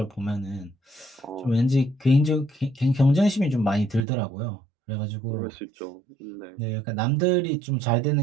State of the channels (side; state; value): left; drops out; at 4.0 s